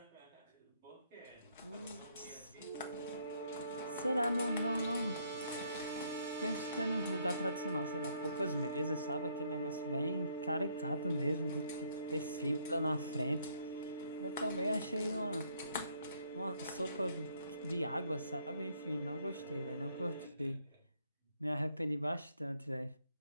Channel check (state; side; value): inverted; both; correlation -0.69